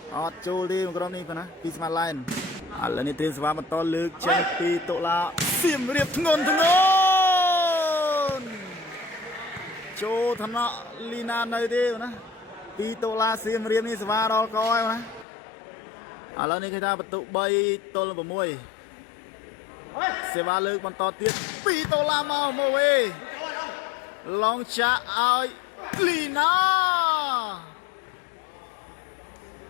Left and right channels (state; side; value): drops out; right; at 15.2 s